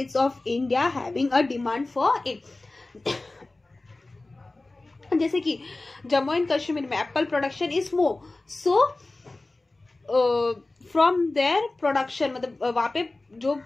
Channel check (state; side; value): quieter; right; 3.1 dB